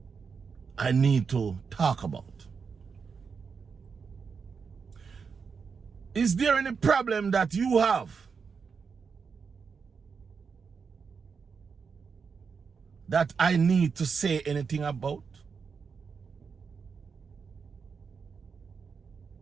I need to talk about? Is there any problem that you have that I need to say anything about?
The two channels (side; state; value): left; quieter; 5.7 dB